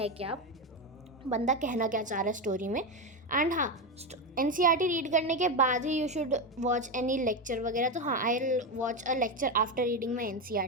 क्या, बंदा कहना क्या चाह रहा है स्टोरी में। एंड हाँ, NCERT रीड करने के बाद ही you should watch any lecture वगैरह। तो हाँ, I will watch a lecture after reading my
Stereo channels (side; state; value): both; normal; correlation 0.12